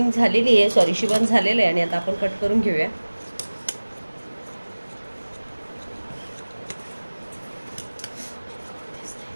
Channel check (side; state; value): both; inverted; correlation -1.00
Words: झालेली आहे, सॉरी शिवण झालेलं आहे. आणि आता आपण कट करून घेऊया.